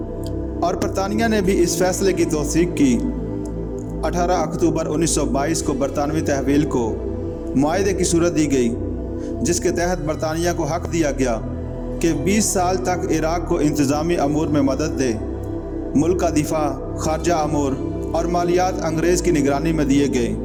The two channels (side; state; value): both; identical; correlation 1.00